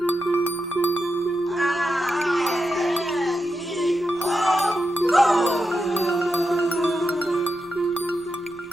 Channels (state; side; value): noise; left; rumble, 28 dB below the sound